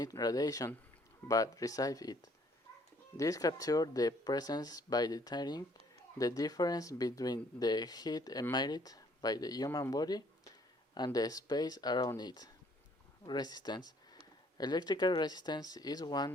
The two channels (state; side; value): normal; both; correlation 0.62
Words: radiation, but receive it. This captures the presence by detecting the difference between the heat emitted by the human body and the space around it. Resistance. Electrical resistance is